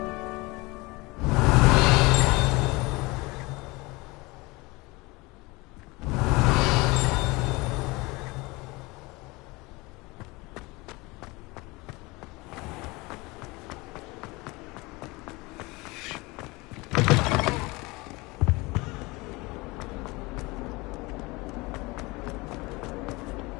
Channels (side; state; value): right; quieter; 23.9 dB